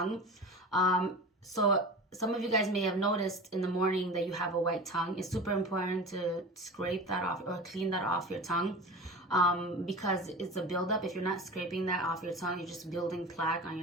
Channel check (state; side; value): normal; both; correlation 0.33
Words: So some of you guys may have noticed in the morning that you have a white tongue. It's super important to scrape that off or clean that off your tongue because it's a buildup. If you're not scraping that off your tongue, you're just building plaque on